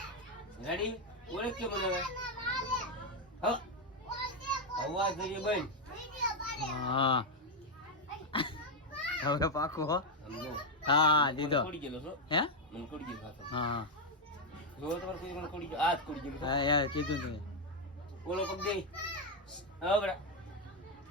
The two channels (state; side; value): normal; both; correlation 0.03